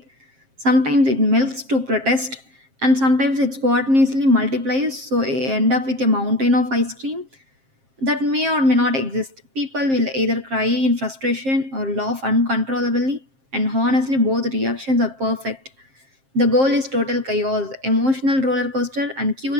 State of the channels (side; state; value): left; late; 7.5 ms